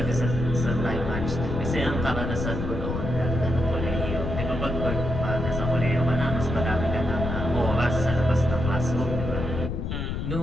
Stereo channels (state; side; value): noise; left; rumble, 3 dB below the sound